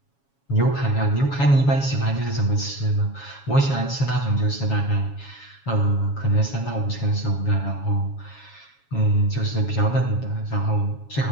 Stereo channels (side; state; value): right; late; 7.2 ms